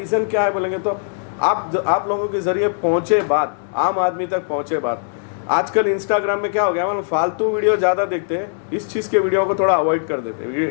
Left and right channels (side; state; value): right; silent; digital silence